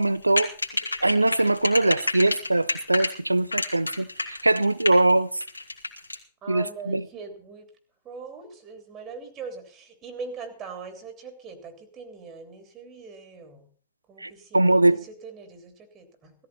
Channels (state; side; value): inverted; both; correlation -0.95